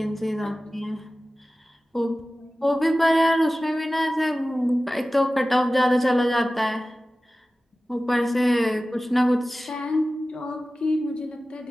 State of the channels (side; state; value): both; normal; correlation 0.96